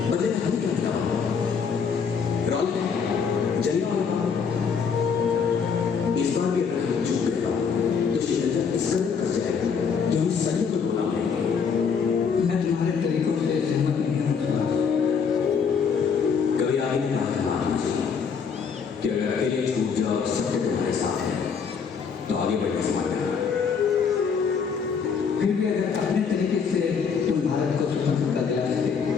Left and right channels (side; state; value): right; quieter; 6.2 dB